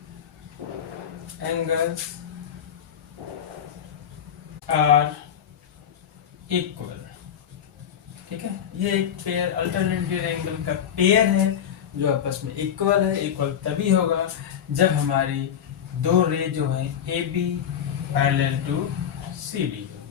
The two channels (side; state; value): right; quieter; 8.9 dB